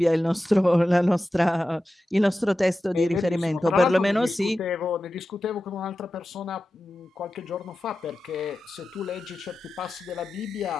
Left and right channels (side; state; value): both; normal; correlation 0.93